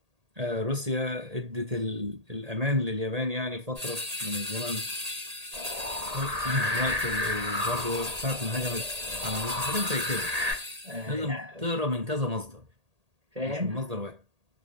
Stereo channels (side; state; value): left; late; 1.8 ms